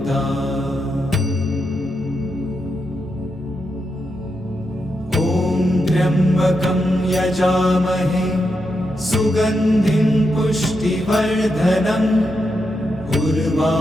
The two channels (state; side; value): normal; both; correlation 0.84